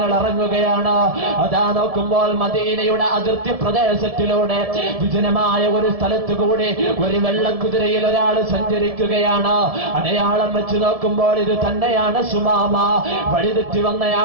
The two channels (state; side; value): late; left; 1.7 ms